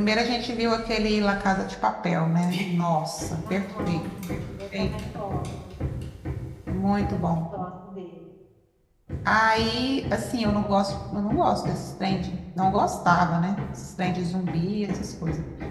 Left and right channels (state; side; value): identical; both; correlation 1.00